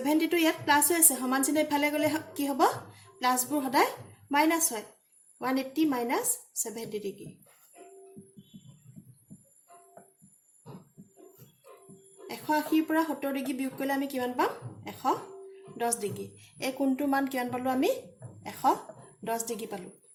টো ইয়াত প্লাস হৈ আছে সমান চিহ্ন ইফালে গলে কি হ'ব প্লাসবোৰ সদায় মাইনাস হয় 180 minus 70 degree 180 পৰা 70 ডিগ্ৰী বিয়োগ কৰিলে আমি কিমান পাম 110 ডিগ্ৰী এই কোণটোৰ মান কিমান পালো আমি 110 ডিগ্ৰী পালো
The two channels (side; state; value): both; identical; correlation 1.00